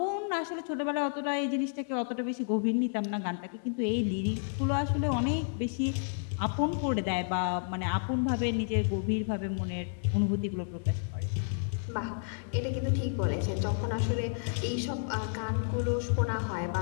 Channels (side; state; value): right; silent; 57 dB below the other